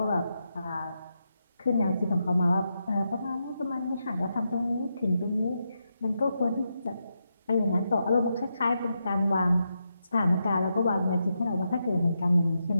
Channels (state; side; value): inverted; both; correlation -0.85